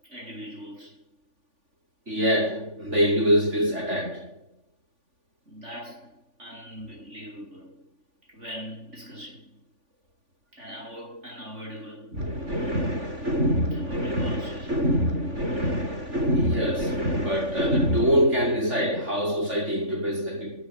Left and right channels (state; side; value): late; left; 3.5 ms